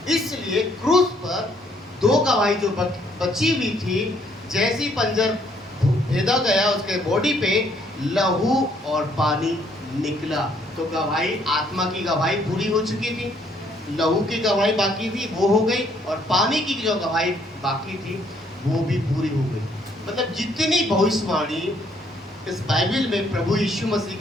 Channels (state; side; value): normal; both; correlation 0.67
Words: इसलिए क्रूस पर दो गवाही जो बची हुई थी, जैसी पंजर भेदा गया उसके बॉडी पे, लहू और पानी निकला। तो गवाही, आत्मा की गवाही पूरी हो चुकी थी, लहू की गवाही बाकी थी, वो हो गई, और पानी की जो गवाही बाकी थी वो भी पूरी हो गई। मतलब जितनी भविष्यवाणी इस बाइबल में प्रभु यीशु मसीह